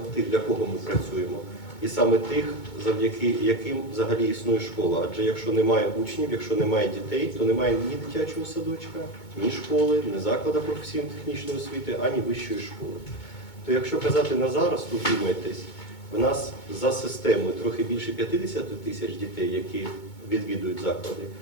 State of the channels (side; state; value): right; late; 2.2 ms